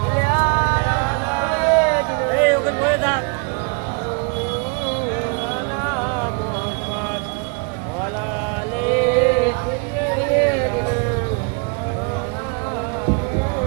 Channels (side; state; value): left; quieter; 34.5 dB